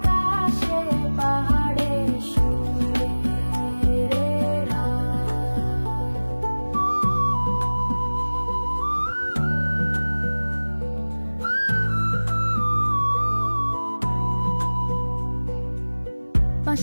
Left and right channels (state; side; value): inverted; both; correlation -1.00